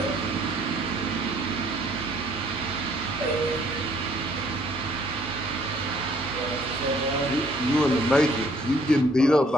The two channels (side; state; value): both; normal; correlation 0.62